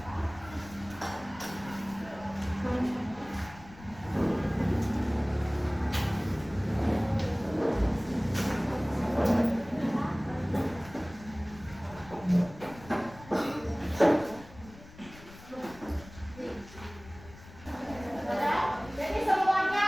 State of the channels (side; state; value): left; noise; rumble, 19 dB below the sound